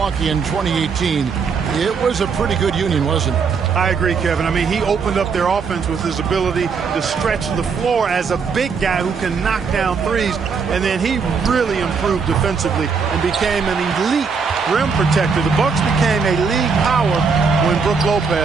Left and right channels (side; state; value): left; quieter; 5.5 dB